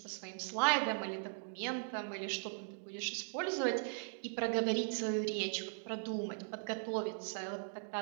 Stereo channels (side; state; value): left; silent; digital silence